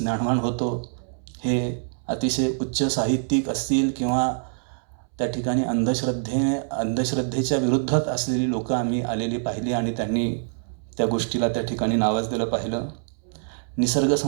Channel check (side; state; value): left; silent; 62 dB below the other